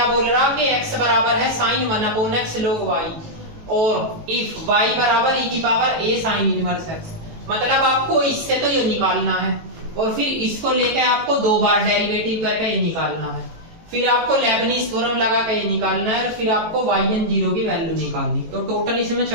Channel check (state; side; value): late; left; 18 ms